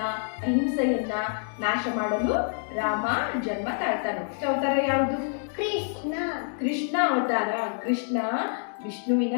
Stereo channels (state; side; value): silent; right; 60 dB below the other